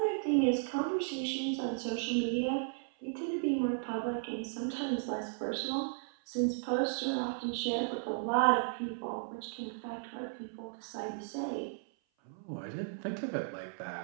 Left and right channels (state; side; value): silent; left; 54 dB below the other